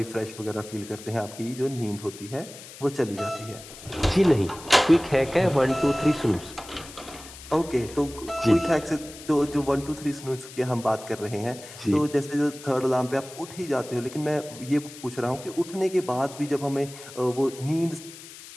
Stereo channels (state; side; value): noise; left; hiss, 16 dB below the sound